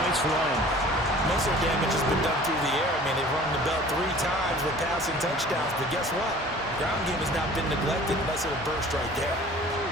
run. Most of the damage has been done through the air. I mean, they've rung the bell 3 times with passing touchdowns, but guess what? Ground game has not been neglected unless it'll burst right there.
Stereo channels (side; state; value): both; normal; correlation 0.47